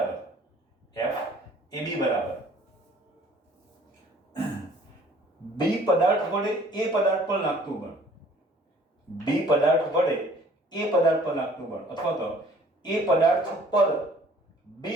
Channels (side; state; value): both; normal; correlation 0.55